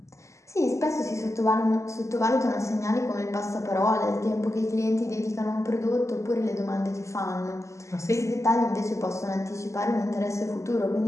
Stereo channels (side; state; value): right; late; 0.14 ms